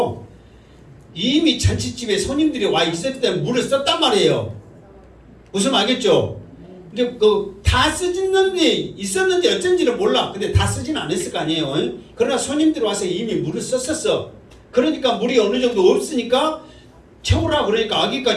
이미 잔치집에 손님들이 와 있을 때 물을 썼단 말이에요. 무슨 말겠죠? 이제 다 쓰졌는지 있었는지 어쩐지는 몰라. 근데 다 쓰지는 않았을 거 아니에요. 그러나 손님들이 와서 이미 물을 썼었어. 그러니까 물이 어느 정도 없으니까 채우라 그러니까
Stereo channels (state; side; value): identical; both; correlation 1.00